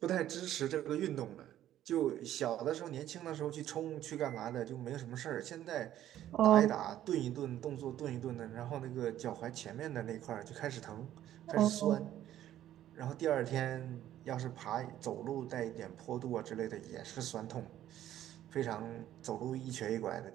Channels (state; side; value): quieter; left; 12.3 dB